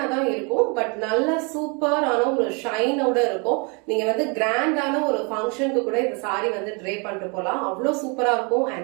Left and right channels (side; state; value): left; quieter; 32.9 dB